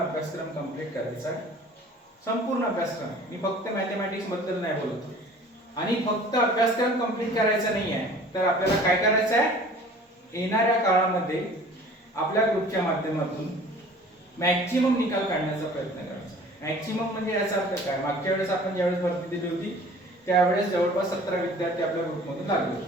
कंप्लीट करायचा आहे. संपूर्ण अभ्यासक्रम. मी फक्त मॅथमॅटिक्स बद्दल नाही बोलतो. आणि फक्त अभ्यासक्रम कंप्लीट करायचा नाही आहे तर आपल्याला काय करायचं आहे? येणाऱ्या काळामध्ये आपल्या ग्रुपच्या माध्यमातून मॅक्झिमम निकाल काढण्याचा प्रयत्न करायचा. मॅक्झिमम म्हणजे याचा अर्थ काय? मागच्या वेळेस आपण ज्यावेळेस भरती दिली होती त्यावेळेस जवळपास 17 विद्यार्थी आपल्या ग्रुपमधून लागले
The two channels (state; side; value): normal; both; correlation 0.48